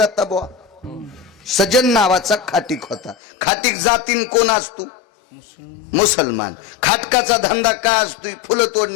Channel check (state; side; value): drops out; right; at 3.2 s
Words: बुवा? सजन नावाचा खाटीक होता. खाटीक जातीन कोण असतो? मुसलमान. खाटकाचा धंदा काय असतो? फुलं